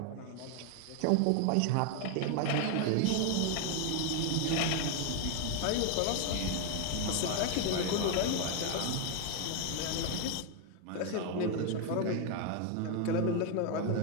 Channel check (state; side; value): different; both; correlation 0.00